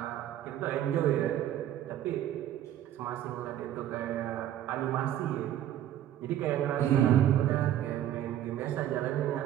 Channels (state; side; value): quieter; left; 11.6 dB